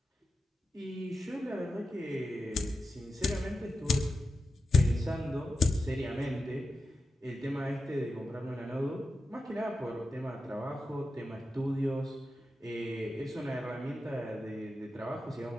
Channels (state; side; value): normal; both; correlation 0.90